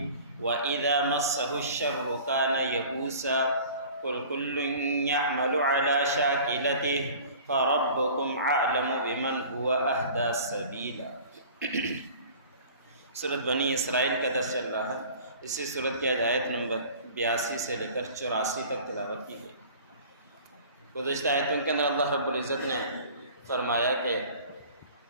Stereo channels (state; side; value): inverted; both; correlation -0.45